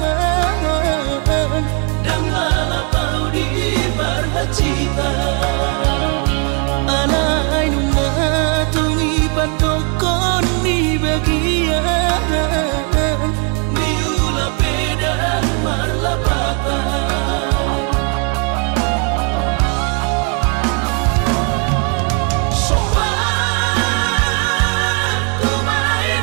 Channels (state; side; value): quieter; left; 37.5 dB